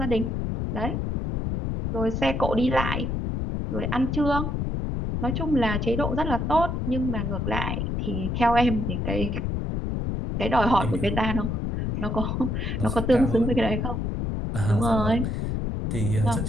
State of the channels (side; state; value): left; noise; rumble, 1 dB below the sound